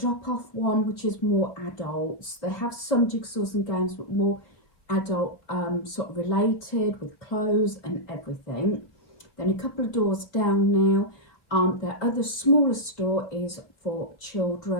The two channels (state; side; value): late; right; 4.6 ms